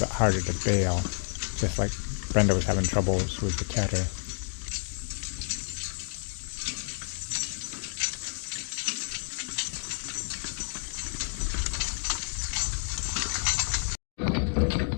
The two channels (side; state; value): right; silent; 58 dB below the other